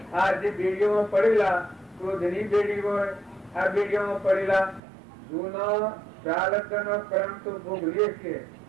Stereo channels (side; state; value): left; drops out; at 4.8 s